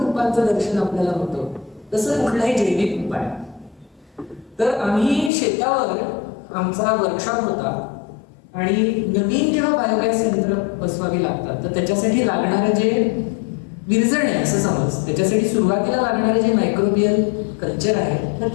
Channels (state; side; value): drops out; right; at 5.3 s